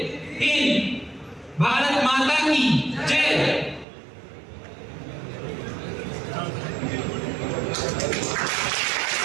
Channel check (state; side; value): drops out; left; at 3.9 s